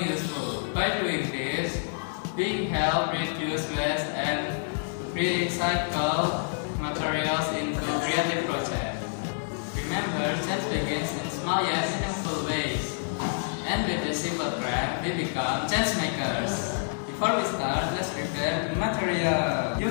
By doing this, we help reduce waste and recycle materials into creative projects. Remember, change begins in small yet meaningful ways. And with a simple craft, we become change makers. Before we start, let's prepare the material. You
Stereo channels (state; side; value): silent; right; digital silence